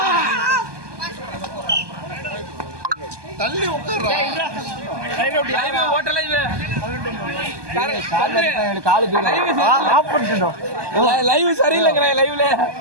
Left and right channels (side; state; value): left; late; 1.2 ms